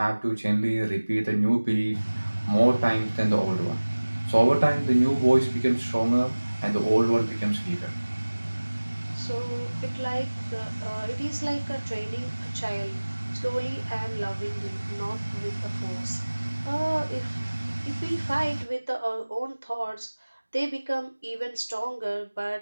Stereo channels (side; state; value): both; inverted; correlation -1.00